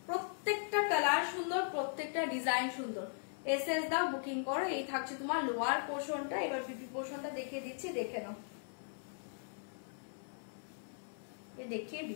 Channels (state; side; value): silent; right; 52 dB below the other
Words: প্রত্যেকটা কালার সুন্দর, প্রত্যেকটা ডিজাইন সুন্দর, এসএস দাও, বুকিং করো। এই থাকছে তোমার লোয়ার পোর্শনটা, এবার বিপি পোর্শনটা দেখিয়ে দিচ্ছি, দেখে নাও। এই দেখিয়ে